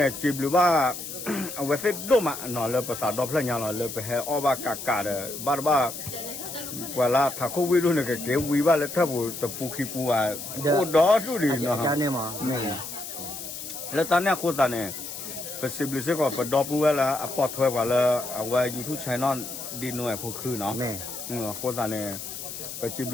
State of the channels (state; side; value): noise; left; hiss, 9 dB below the sound